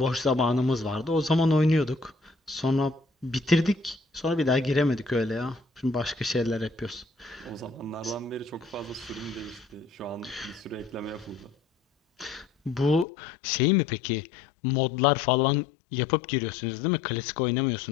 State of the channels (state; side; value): drops out; right; at 13.1 s